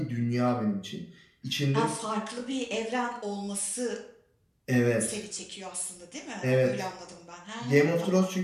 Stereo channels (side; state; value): both; identical; correlation 1.00